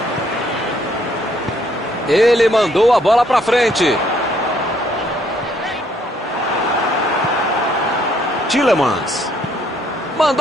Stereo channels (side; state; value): both; normal; correlation 0.67